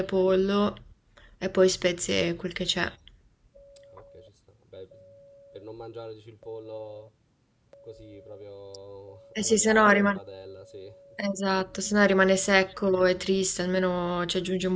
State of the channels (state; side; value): identical; both; correlation 1.00